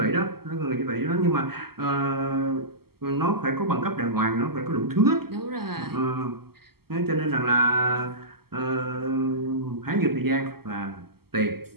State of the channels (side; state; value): left; late; 0.95 ms